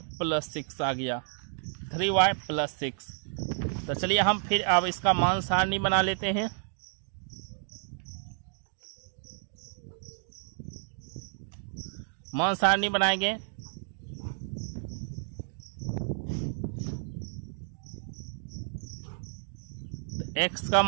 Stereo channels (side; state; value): left; silent; digital silence